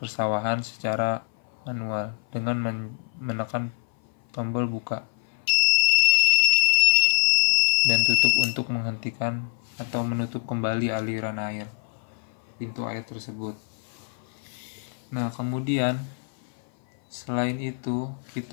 secara manual dengan menekan tombol buka dan tutup untuk menghentikan atau menutup kembali aliran air pintu air tersebut. Nah, kemudian selain itu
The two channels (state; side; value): silent; right; 57 dB below the other